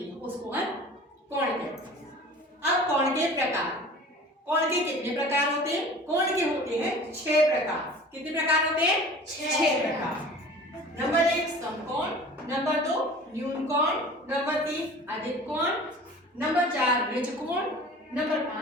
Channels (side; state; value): both; normal; correlation 0.42